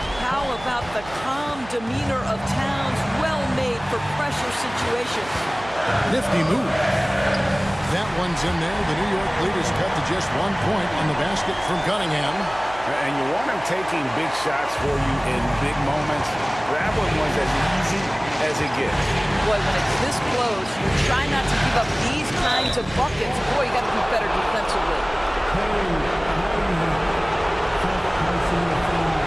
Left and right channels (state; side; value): noise; right; hum, 17 dB below the sound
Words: How about the calm demeanor of Towns? Well made for pressure situations. Nifty move. That one's in there. The New York lead is cut to just 1 point on the basket from Cunningham. And you want him taking big shots for you in big moments. That one was as easy as it gets. Boy, when it's this close, you try not to give up these kinds of buckets. Boy, you got to be better defensively.